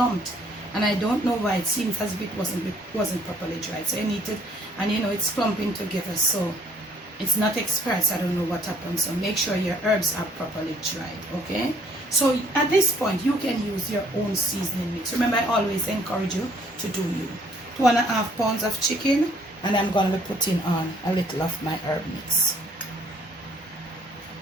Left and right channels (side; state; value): both; normal; correlation 0.61